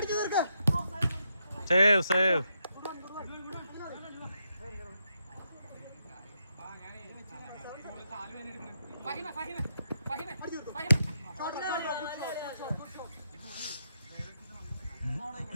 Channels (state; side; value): inverted; both; correlation -0.81